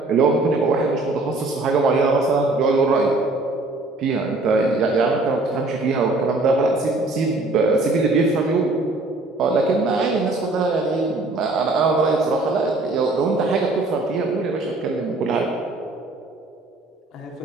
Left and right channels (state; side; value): quieter; left; 3.1 dB